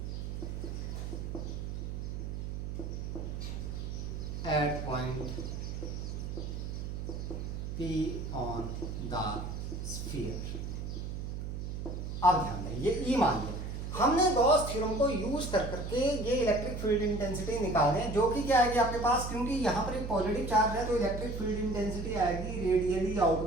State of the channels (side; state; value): right; noise; hum, 5 dB below the sound